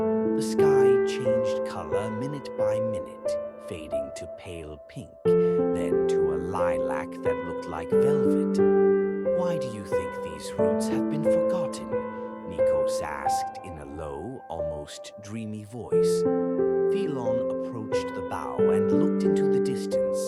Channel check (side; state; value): both; identical; correlation 1.00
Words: sky changed color minute by minute, fading to pale pink, then to a lilac that looked like velvet. "Why do you think these roots have been forgotten?" Nikos asked in a low, almost dreamy voice. Philon approached the bow and looked into the